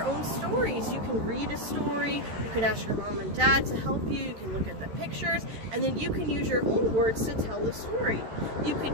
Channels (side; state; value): left; late; 13 ms